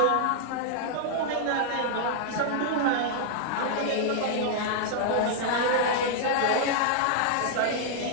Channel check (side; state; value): both; different; correlation -0.01